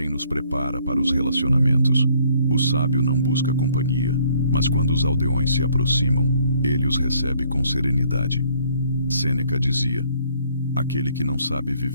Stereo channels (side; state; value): both; inverted; correlation -0.63